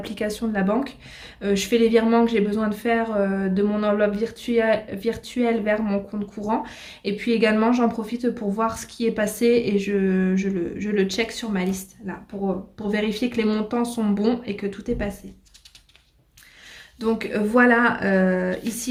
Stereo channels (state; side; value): identical; both; correlation 1.00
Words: de la banque. Je fais les virements que j'ai besoin de faire de mon enveloppe virtuelle vers mon compte courant. Et puis également, j'en profite pour voir ce qui est passé et je le check sur ma liste, là, pour vérifier que les montants sont bons et que tout est passé. Donc voilà,